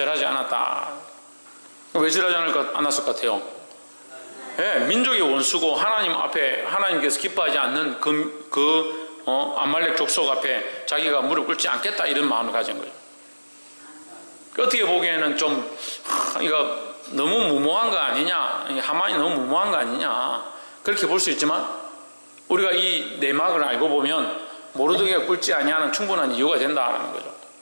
않았다. 왜 절하지 않았을 것 같아요? 네, 민족의 원수고 하나님 앞에 하나님께서 기뻐하지 않는 아말렉 족속 앞에 자기가 무릎 꿇지 않겠다, 이런 마음을 가진 거죠. 어떻게 보기에는 좀 이거 너무 무모한 거 아니냐, 하만이 너무 무모한 거 아니냐, 그렇게 볼 수 있지만 우리가 이 내막을 알고 보면 모르드게가 꿇지 아니하는 충분한 이유가 된다는 거죠.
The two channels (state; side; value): inverted; both; correlation -1.00